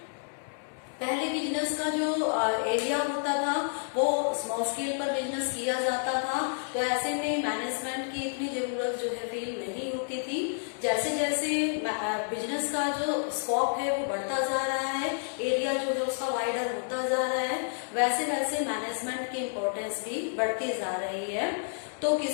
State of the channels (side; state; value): right; silent; digital silence